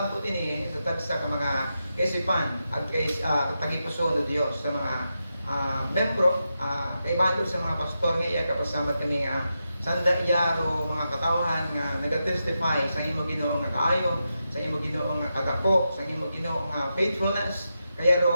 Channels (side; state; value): both; inverted; correlation -0.88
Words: ini sa tagsa ka mga kaisipan at kay tagipuso no Dios sa mga membro, kaibahan sa mga pastor nga iya kapasamat kami nga sanda iya ro mga katawhan nga nagatestify sa imo Ginoo nga kaayo, sa imo Ginoo nga kadako, sa imo Ginoo nga faithfulness. Kaya